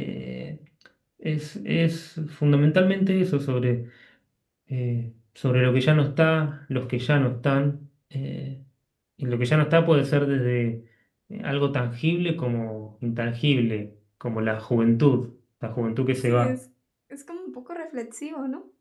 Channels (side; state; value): both; identical; correlation 1.00